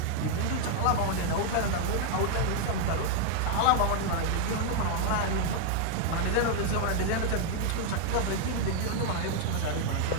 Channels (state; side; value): different; both; correlation 0.00